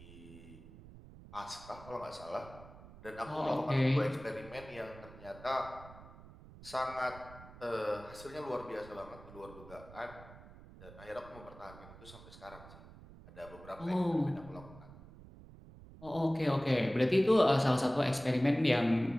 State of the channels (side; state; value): right; noise; rumble, 18 dB below the sound